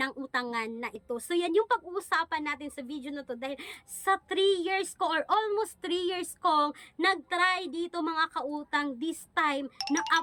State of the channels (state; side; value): identical; both; correlation 1.00